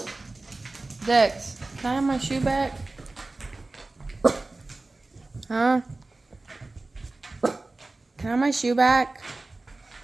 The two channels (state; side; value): quieter; left; 3.2 dB